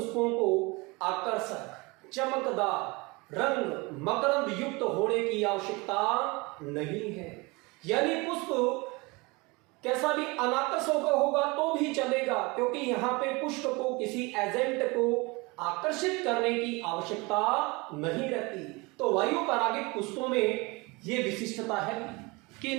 को आकर्षक, चमकदार, रंग, मकरंद युक्त होने की आवश्यकता नहीं है। यानी पुष्प कैसा भी अनाकर्षक होगा तो भी चलेगा, क्योंकि यहाँ पे पुष्प को किसी एजेंट को आकर्षित करने की आवश्यकता नहीं रहती। तो वायु परागित पुष्पों में ये विशिष्टता है कि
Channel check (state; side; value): quieter; left; 25.6 dB